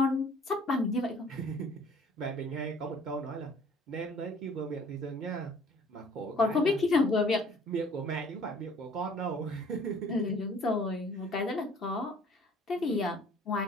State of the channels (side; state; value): both; normal; correlation 0.54